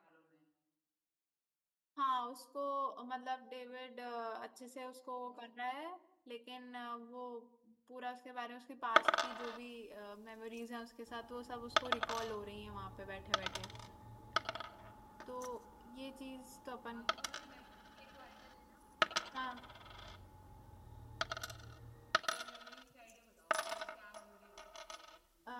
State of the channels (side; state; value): both; identical; correlation 1.00